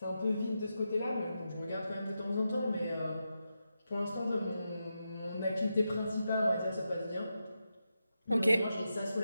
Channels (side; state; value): both; inverted; correlation -0.87